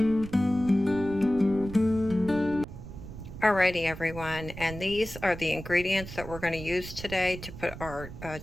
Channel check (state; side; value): noise; right; rumble, 12 dB below the sound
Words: Alrighty everyone, and these are the ingredients that we're going to use today to put our